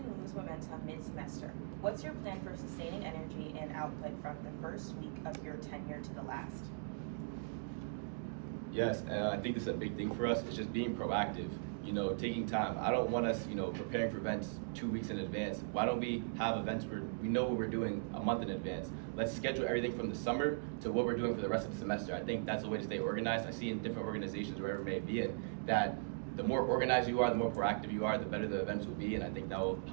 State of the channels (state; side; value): silent; left; digital silence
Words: lose momentum mid-semester. What's your plan for sustaining energy and output from the first week of your tenure to the last? Yes, and I think this is a big thing for us. It's just being proactive, taking time. I don't want us, preparing for events 2 weeks in advance. Why don't we have events where we know what we're doing a month in advance? Let's schedule everything from the summer to what we're doing for the rest of the semester. I think that's a way to stay organized. I see in different organizations, wherever it may be in, that the more organized you are, the more proactive you are, the better the events will be, and I think that will